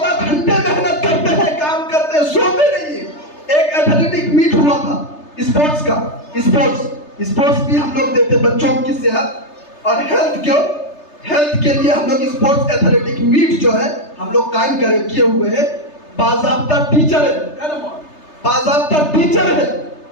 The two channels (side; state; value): right; late; 3.3 ms